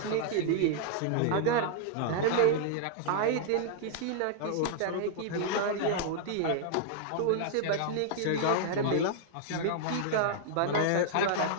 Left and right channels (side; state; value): both; different; correlation -0.01